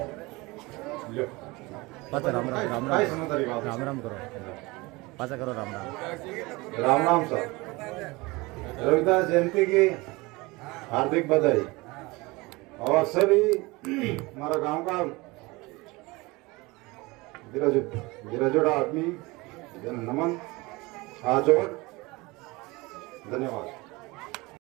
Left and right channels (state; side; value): quieter; left; 23.4 dB